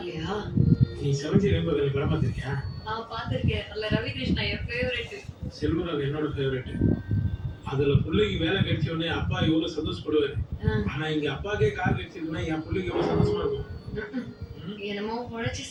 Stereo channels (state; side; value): identical; both; correlation 1.00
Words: நீ செவஞ்சி ரெம்பகல படம் பார்த்திருக்கியா? பார்த்திருக்கேன். அதுல ரவி கிருஷ்ணா என் ஃபேவரட். செல்வராஜ் என்னோட ஃபேவரட். அதுல பிள்ளைக்கு வேலை கிடைச்ச உடனே அப்பா எவ்வளவு சந்தோஷப்படுவாரு. ஆனா இங்க அப்பாக்கே கார் கிடைச்சதுன்னா என் பிள்ளைக்கு எவ்வளவு சந்தோஷமா இருக்கும். என்னமோ உழைச்சி